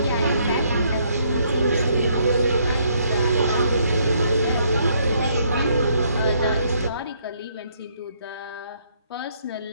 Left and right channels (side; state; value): both; inverted; correlation -0.69